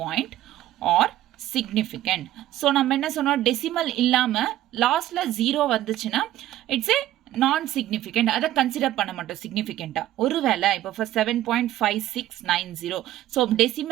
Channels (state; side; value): quieter; left; 13.9 dB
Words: point or significant so நம்ம என்ன சொன்னோம் decimal இல்லாம லாஸ்ட்ல 0 வந்துச்சுன்னா it's ஏ நான் சிக்னிஃபிகண்ட் அதை கன்சிடர் பண்ண மாட்டோம் சிக்னிஃபிகண்டா ஒருவேளை இப்போ ஃபர்ஸ்ட் 7.5690 ஸோ